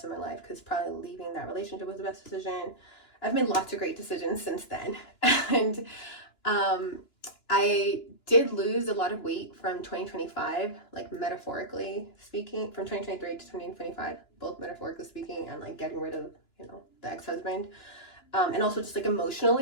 of my life, because probably leaving that relationship was the best decision. I've made lots of great decisions since then. And I did lose a lot of weight from 2025, like metaphorically speaking, from 2023 to 2025, both metaphorically speaking and like getting rid of, you know, the ex-husband. And also just like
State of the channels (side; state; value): right; late; 2.9 ms